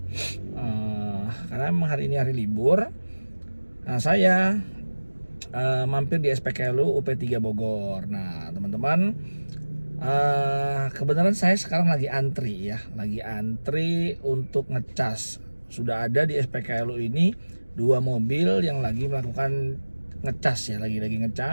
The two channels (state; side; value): inverted; both; correlation -1.00